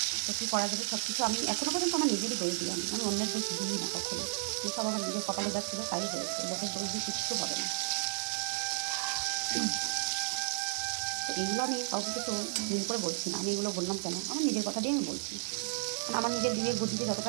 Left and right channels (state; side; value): silent; left; digital silence